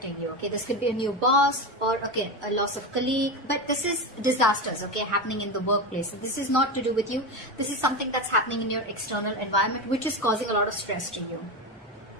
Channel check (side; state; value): both; normal; correlation 0.19